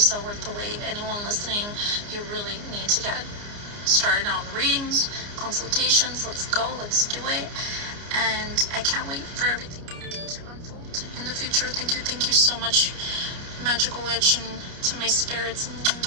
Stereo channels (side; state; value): left; late; 29 ms